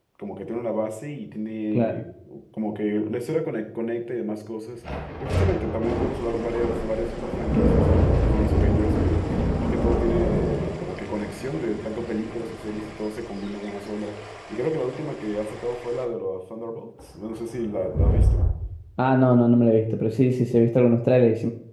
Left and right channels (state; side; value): identical; both; correlation 1.00